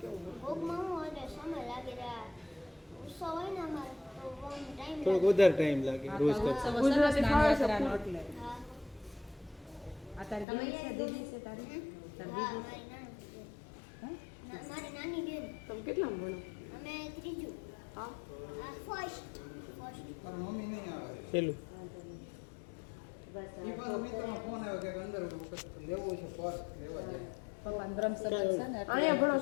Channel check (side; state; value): right; drops out; at 10.5 s